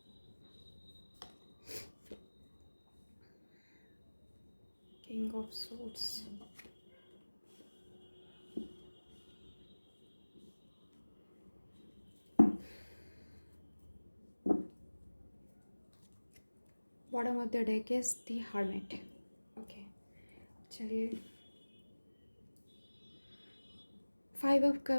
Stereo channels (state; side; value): inverted; both; correlation -1.00